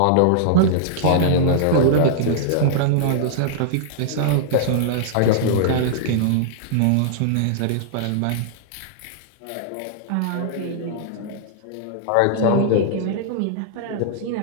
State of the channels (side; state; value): both; different; correlation -0.01